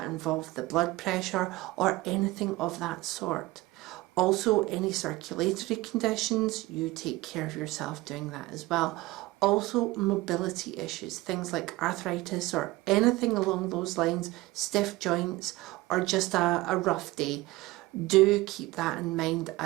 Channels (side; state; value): left; quieter; 19.6 dB